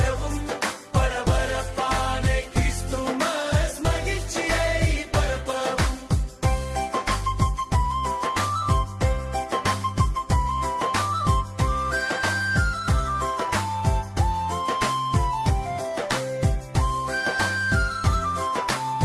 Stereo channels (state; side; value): identical; both; correlation 1.00